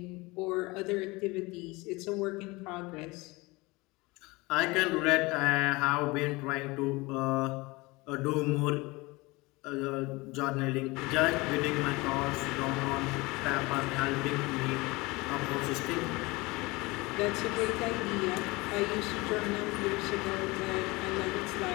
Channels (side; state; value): right; quieter; 23.3 dB